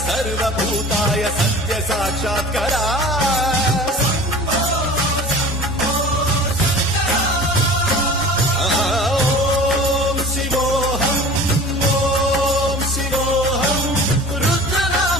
सर्वभूताय सत्य साक्षात्करा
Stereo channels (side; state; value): both; normal; correlation 0.41